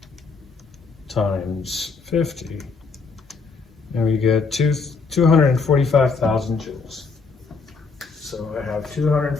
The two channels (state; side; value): quieter; right; 4.6 dB